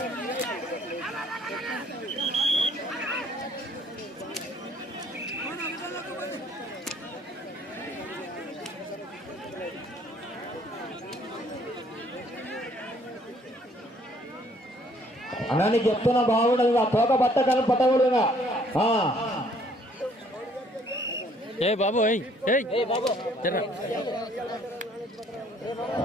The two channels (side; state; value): both; normal; correlation 0.62